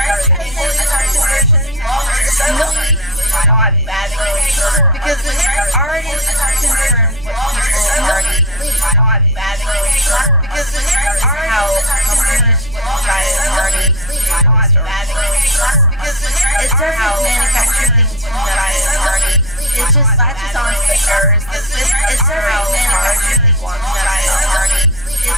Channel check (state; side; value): noise; right; rumble, 18 dB below the sound